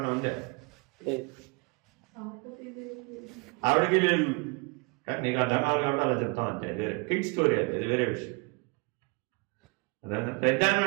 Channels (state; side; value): quieter; left; 29.9 dB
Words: ఉందా? ఆవిడకి లేదు. నీకు అర్థం కావాలి కాబట్టి అలా చెప్తాం అంతే. అది వేరే కిడ్ స్టోరీ. అది వేరే విషయం. అదన్నా